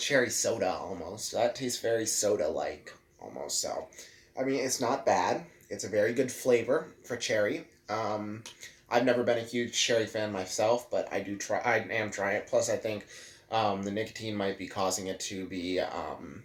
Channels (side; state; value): both; identical; correlation 1.00